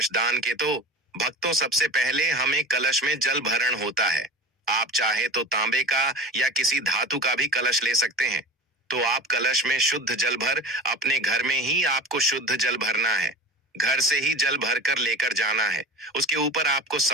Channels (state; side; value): normal; both; correlation 0.34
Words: दान के। तो भक्तों, सबसे पहले हमें कलश में जल भरण होता है। आप चाहे तो तांबे का या किसी धातु का भी कलश ले सकते हैं। तो आप कलश में शुद्ध जल भर अपने घर में ही आपको शुद्ध जल भरना है। घर से ही जल भर कर लेकर जाना है। उसके ऊपर आपको